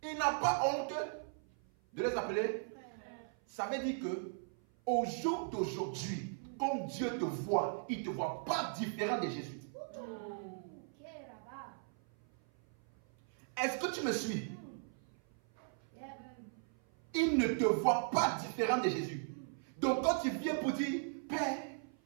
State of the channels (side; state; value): left; silent; 52 dB below the other